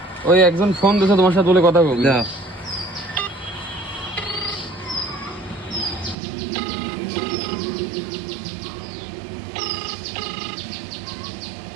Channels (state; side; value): drops out; left; at 6.2 s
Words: ওই একজন ফোন দিয়েছে, তোমার সাথে বলে কথা বলবো। যাও।